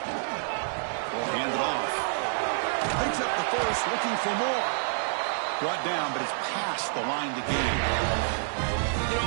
We'll hand it off. Picks up the first, looking for more. Brought down, but it's past the line to gain. You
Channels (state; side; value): silent; left; 59 dB below the other